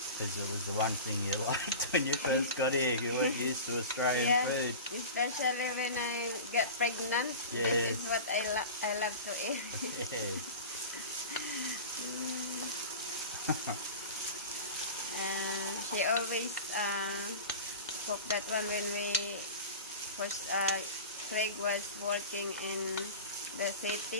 Because it was the one thing you liked when you first got here. You weren't used to Australian food. Especially when I get pregnant. This is what I love to eat. She always cook that one when we first Craig was working in the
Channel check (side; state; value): both; inverted; correlation -0.33